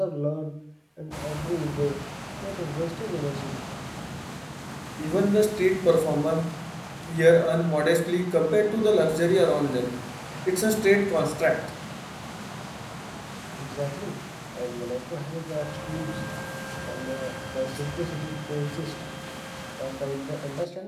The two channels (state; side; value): identical; both; correlation 1.00